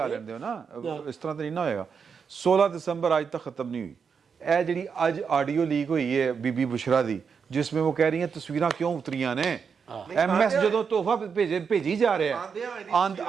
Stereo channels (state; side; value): quieter; left; 6.2 dB